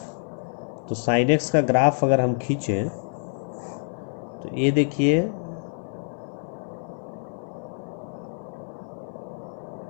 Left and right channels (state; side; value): silent; right; 59 dB below the other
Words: तो साइन एक्स का ग्राफ अगर हम खींचें तो ये देखिए,